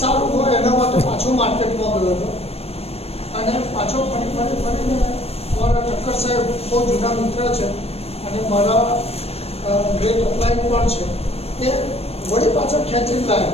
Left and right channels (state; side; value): late; right; 0.29 ms